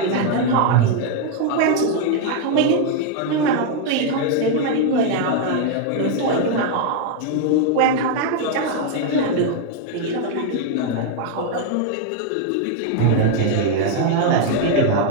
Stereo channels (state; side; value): different; both; correlation 0.00